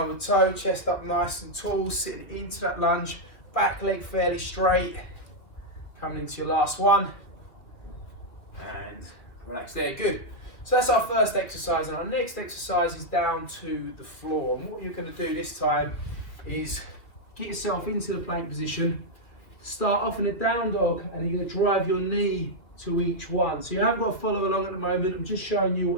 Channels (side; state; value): right; late; 2.6 ms